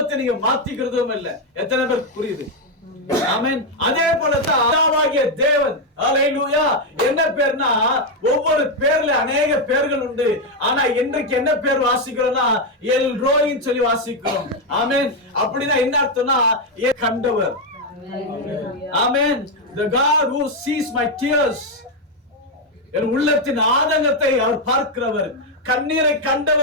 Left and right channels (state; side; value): normal; both; correlation 0.03